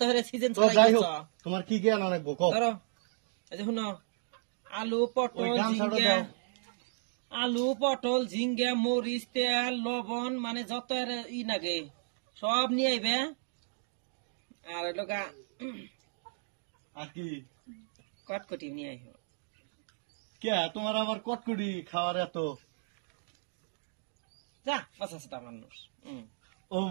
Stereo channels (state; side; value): silent; left; digital silence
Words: হলে সিজন তো যাই হোক, তোমার কি জ্ঞান অনেক বকো। ধরো এই যে শুনো, আলু পটল ঝিঙ্গা, আলু পটল ঝিঙ্গা, মরিচ, তেল, লবণ, মানে যত ই লাগে সব নিয়ে আইবে। আর লোকা আর কি কটকটি নিয়ে আইব। কে তোমার আবার কটকটি খাওয়ার এত? যা বাসা সাথে মানুষ। ও